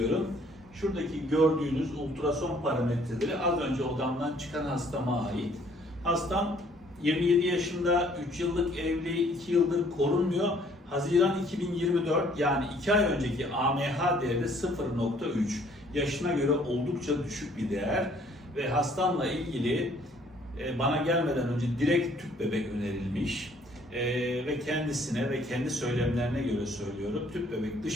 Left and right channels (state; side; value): normal; both; correlation 0.61